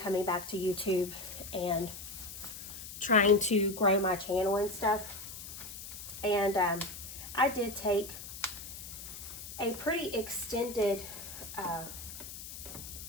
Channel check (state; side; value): noise; left; hiss, 11 dB below the sound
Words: back to YouTube and trying to grow my channel and stuff. And I did take a pretty extended